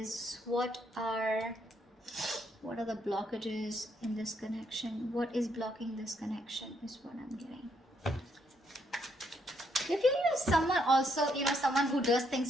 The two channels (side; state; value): both; normal; correlation 0.74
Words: what are the blockages in this connection. What is blocking this connection is what I'm getting. If you use someone also, someone who does